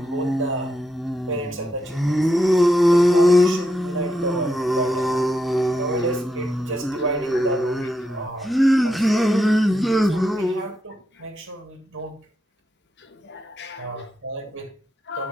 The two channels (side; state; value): both; normal; correlation 0.83